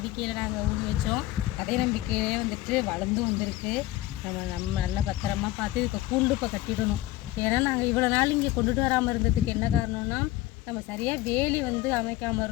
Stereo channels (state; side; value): quieter; right; 16.6 dB